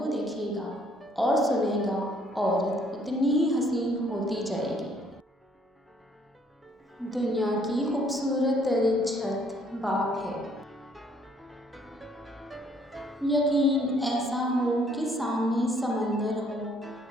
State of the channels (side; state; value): both; normal; correlation 0.64